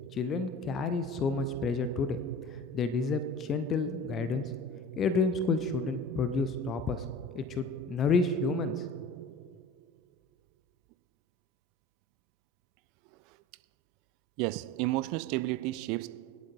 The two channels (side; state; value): both; normal; correlation 0.39